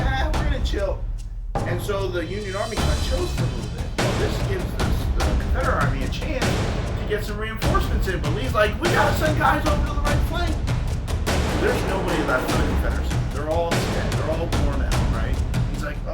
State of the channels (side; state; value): both; identical; correlation 1.00